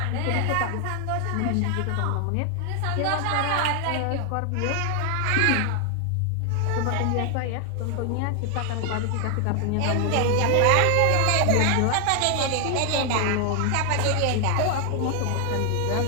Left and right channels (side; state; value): both; different; correlation 0.00